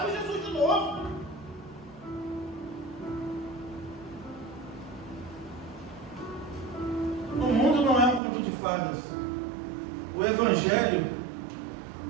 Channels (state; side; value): drops out; left; at 8.2 s